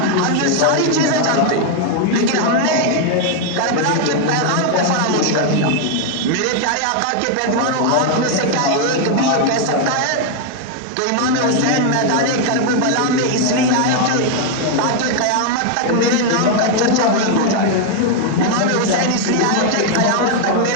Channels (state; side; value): different; both; correlation 0.00